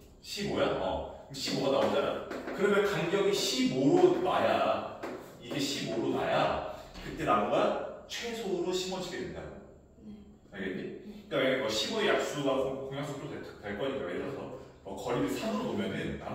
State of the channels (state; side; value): identical; both; correlation 1.00